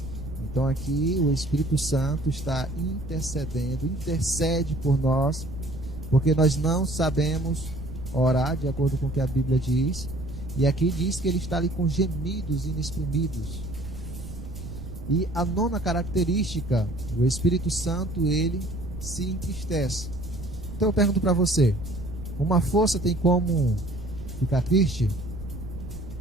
Então aqui o Espírito Santo está intercedendo, intercede por nós, porque nós não sabemos orar de acordo com o que a Bíblia diz. E aqui diz que ele está ali com gemidos inexprimidos. E a nona característica, o Espírito Santo, ele se entristece. Então eu pergunto para você, uma força tem como ficar triste?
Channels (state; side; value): noise; right; rumble, 11 dB below the sound